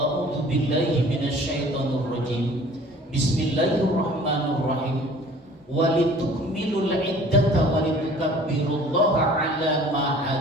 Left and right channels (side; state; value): both; normal; correlation 0.49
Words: billahi minasy syaithanir rajim. Bismillahirrahmanirrahim. Walitukmilul iddata walitukabbirullaha 'ala ma